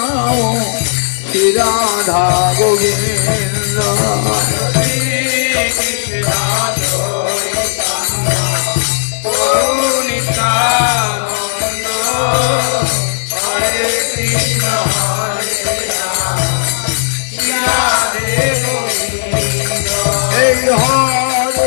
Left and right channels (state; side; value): silent; right; digital silence